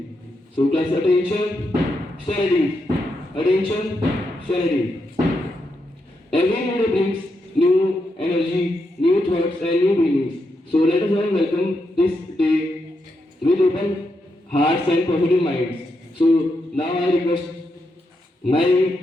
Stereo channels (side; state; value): both; normal; correlation 0.83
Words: So class attention, studies. Attention, studies. Every new day brings new energy, new thoughts, and new feelings. So let us all welcome this day with open hearts and positive minds. So now I request